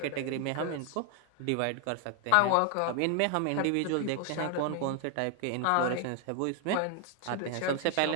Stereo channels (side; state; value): both; different; correlation 0.00